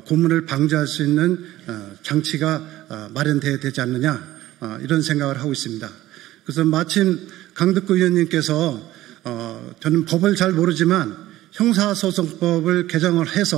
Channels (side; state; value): left; quieter; 15.4 dB